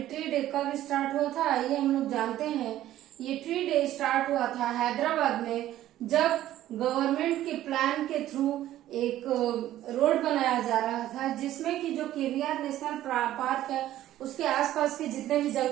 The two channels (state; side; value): quieter; left; 13.4 dB